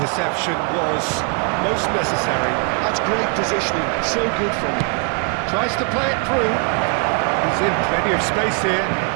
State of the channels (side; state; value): left; quieter; 39.7 dB